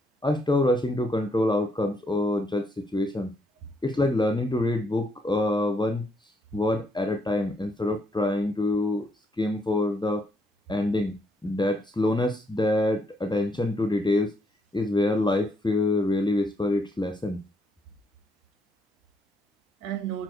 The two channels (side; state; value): both; normal; correlation 0.73